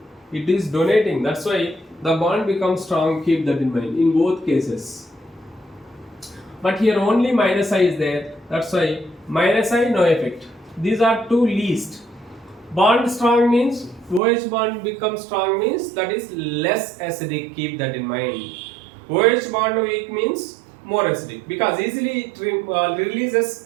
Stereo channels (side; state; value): left; drops out; at 14.2 s